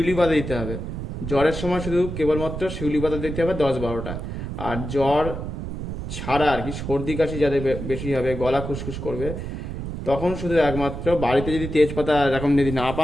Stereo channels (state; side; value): noise; right; rumble, 6 dB below the sound